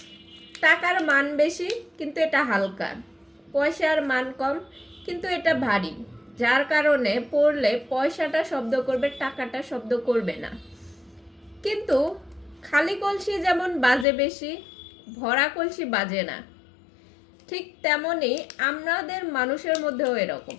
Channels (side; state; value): right; drops out; at 14.1 s